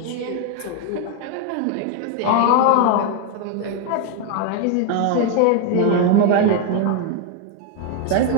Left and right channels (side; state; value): both; different; correlation 0.01